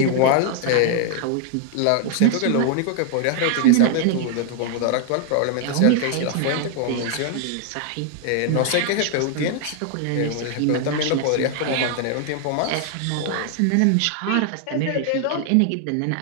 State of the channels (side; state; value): both; different; correlation 0.00